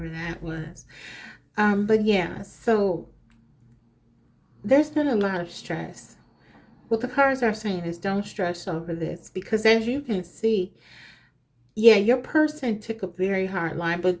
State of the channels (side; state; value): both; identical; correlation 1.00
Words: that was. But yeah, so there's been a lot of stress. What the cards are saying is don't stress over this, because as you can see, yeah, your person took a very hard line, but